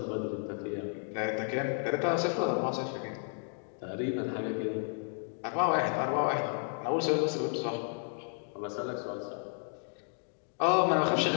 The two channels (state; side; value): silent; right; 56 dB below the other